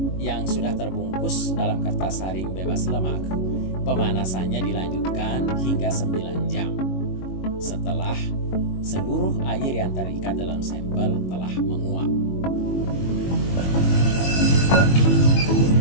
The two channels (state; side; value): late; right; 22 ms